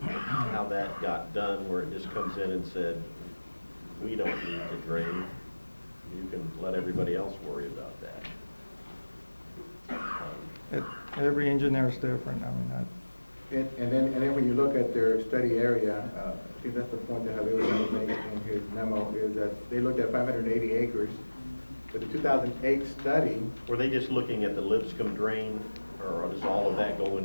how that got done, where it just comes in and said, we don't need to drain. You can let everybody else worry about that. Every engineer is different. I mean, And then when you look at their study area, I think that's the point that Javier was trying to make in his memo, is that they looked at 580 acres. But the 2008 study, Were they just looking at the Lipscomb drain, or does all of that go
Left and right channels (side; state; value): both; inverted; correlation -1.00